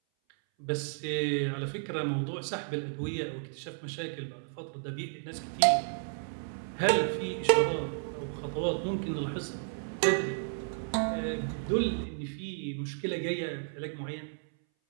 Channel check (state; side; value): silent; left; 56 dB below the other